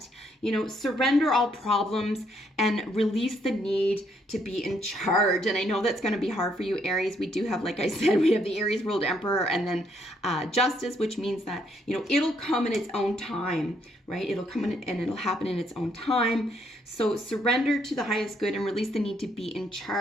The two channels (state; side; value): normal; both; correlation 0.71